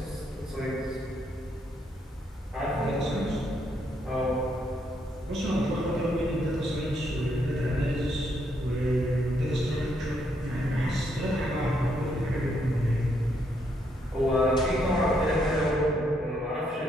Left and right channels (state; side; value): normal; both; correlation 0.75